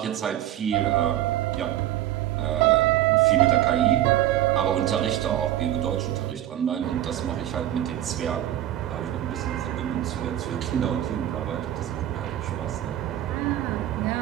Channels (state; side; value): quieter; left; 12.7 dB